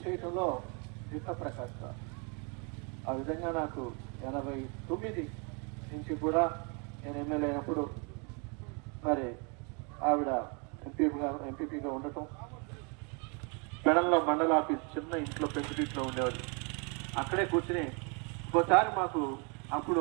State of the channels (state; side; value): quieter; left; 34.5 dB